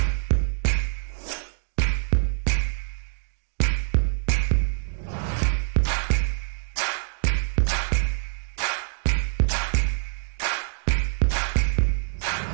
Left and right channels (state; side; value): silent; left; digital silence